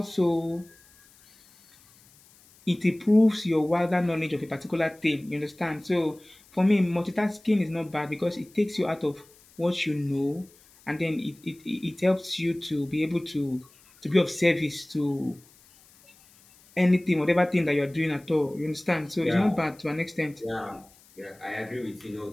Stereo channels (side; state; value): left; noise; hiss, 28 dB below the sound